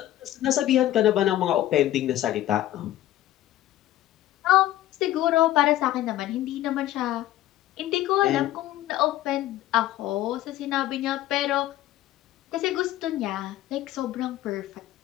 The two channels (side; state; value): right; quieter; 14.1 dB